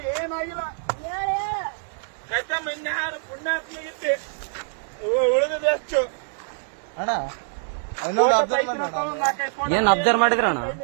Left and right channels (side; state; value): left; silent; digital silence